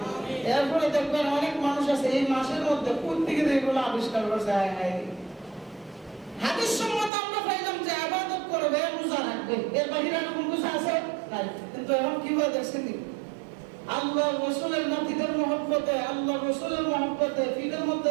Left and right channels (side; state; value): left; drops out; at 7.1 s